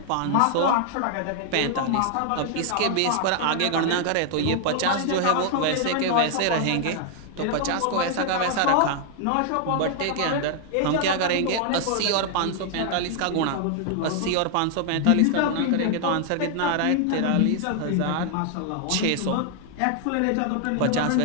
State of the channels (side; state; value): both; different; correlation 0.00